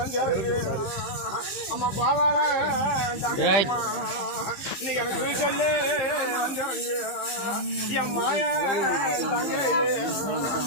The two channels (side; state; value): right; late; 15 ms